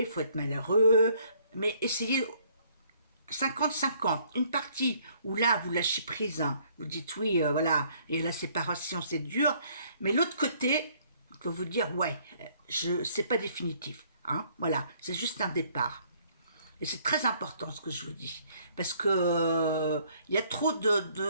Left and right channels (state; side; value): inverted; both; correlation -0.63